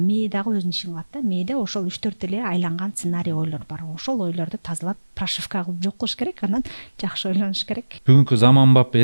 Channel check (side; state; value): both; inverted; correlation -1.00